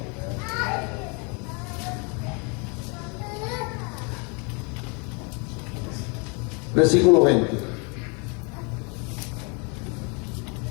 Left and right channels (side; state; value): right; quieter; 33.7 dB